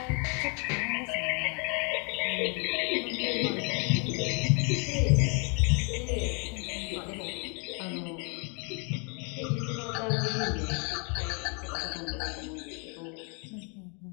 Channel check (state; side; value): quieter; right; 35.8 dB